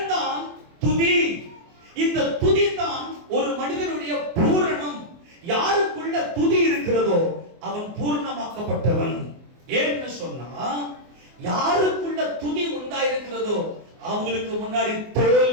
தான் துதி. இந்த துதி தான் ஒரு மனிதனுடைய பூரணம். யாருக்குள்ள துதி இருக்கிறதோ அவன் பூர்ணமாக்கப்பட்டவன். ஏன்னு சொன்னா, யாருக்குள்ள துதி உண்டாயிருக்கிறதோ அவங்களுக்கு முன்னாடி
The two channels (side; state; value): left; late; 24 ms